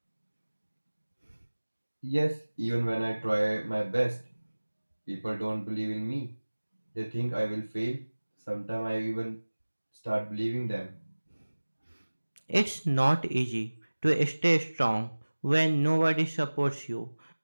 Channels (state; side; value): inverted; both; correlation -1.00